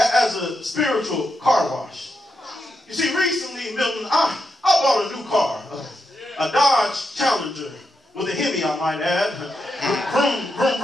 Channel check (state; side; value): normal; both; correlation 0.85